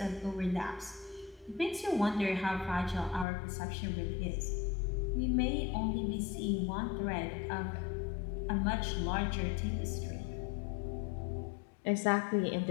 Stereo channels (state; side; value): drops out; right; at 3.2 s